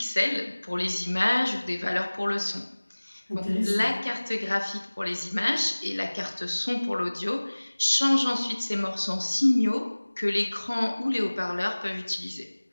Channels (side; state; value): both; inverted; correlation -1.00